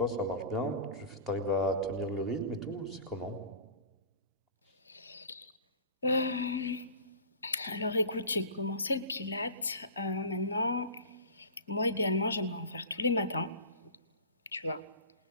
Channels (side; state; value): both; inverted; correlation -0.35